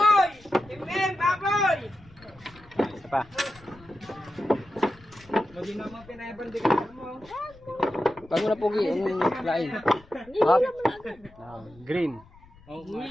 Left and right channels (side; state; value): left; noise; rumble, 24 dB below the sound